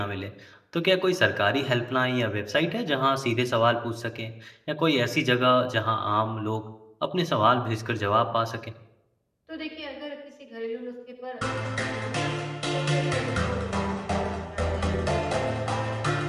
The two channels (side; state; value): both; identical; correlation 1.00